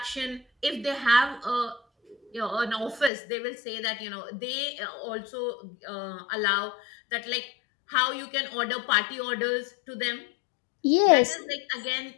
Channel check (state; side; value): drops out; right; at 3.1 s